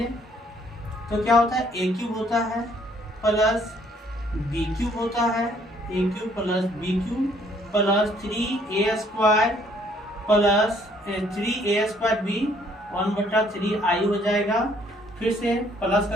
तो क्या होता है, a क्यूब होता है प्लस बी क्यूब होता है, a cube plus b cube plus 3a² plus 3a² b 1/3 i हो जाएगा। फिर से प्लस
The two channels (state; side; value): normal; both; correlation 0.64